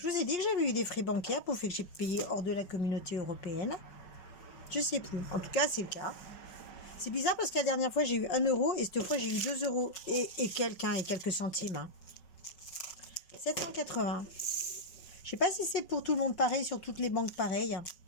vous ai dit que j'avais eu des frais bancaires pour faire que j'ai payé hors de la communauté européenne. Je sais plus. En tout cas, c'est le cas. C'est bizarre parce que la dernière fois, j'ai eu 1 euro et cette fois, j'ai eu 2 euros et quelques centimes. Hein. 780. Je sais pas si c'est pour tout le monde pareil, sur toutes les banques pareilles.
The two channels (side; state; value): right; late; 5.3 ms